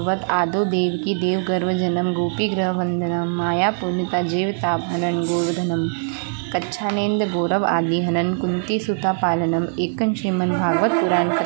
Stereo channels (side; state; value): left; silent; digital silence